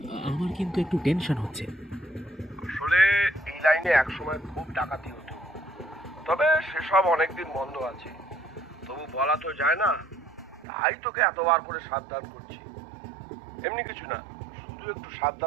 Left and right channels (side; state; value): left; drops out; at 10.7 s